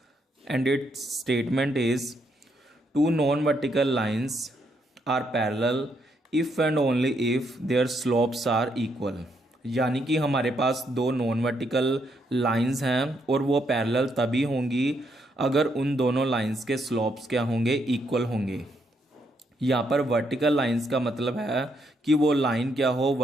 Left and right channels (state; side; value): normal; both; correlation 0.76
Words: and its statement is two non-vertical lines are parallel if and only if their slopes are equal. यानी कि हमारे पास दो non vertical lines हैं और वो parallel तभी होंगी अगर उन दोनों लाइंस के स्लोप्स क्या होंगे, इक्वल होंगे। यहाँ पर वर्टिकल लाइंस का मतलब है कि वो लाइन क्या हो,